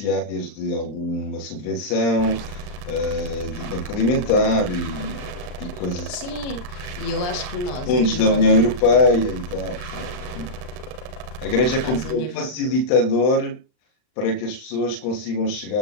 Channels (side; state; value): right; late; 39 ms